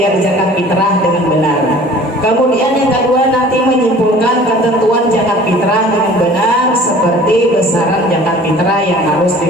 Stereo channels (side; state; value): both; normal; correlation 0.47